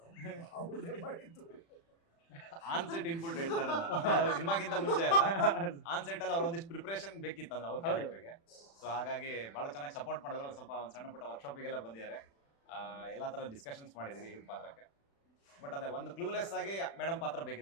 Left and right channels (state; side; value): late; right; 36 ms